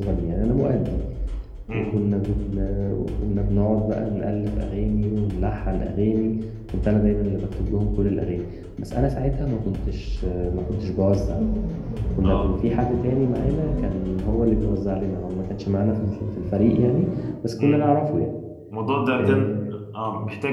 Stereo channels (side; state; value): both; identical; correlation 1.00